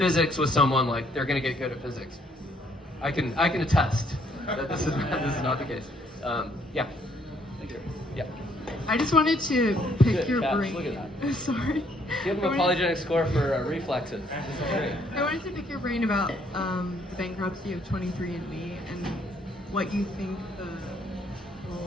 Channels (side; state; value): both; normal; correlation 0.67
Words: with someone, like, they're going to get good at physics. I can attest that this is not the case. Yeah. Thank you. Yeah. I just wanted to pick Good your catch. brain. Look at that. Sorry. Give him a polygenic score for reflexes. I wanted to pick your brain about the bankruptcy of 23andMe and what you think the